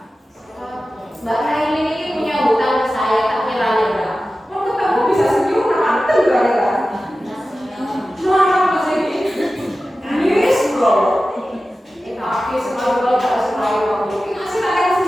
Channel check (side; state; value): both; normal; correlation 0.95